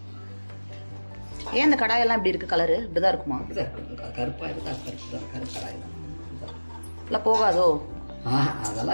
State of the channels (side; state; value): both; inverted; correlation -1.00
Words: ஏன் இந்த கடாயெல்லாம் இப்படி இருக்கு? கலரு இப்படிதான் இருக்குமா? கருப்பா இருக்கா? கருப்பு கடாய் எல்லாம் போகாதோ?